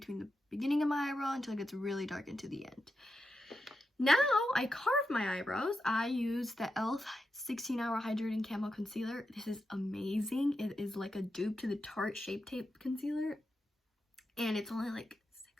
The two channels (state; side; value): normal; both; correlation 0.88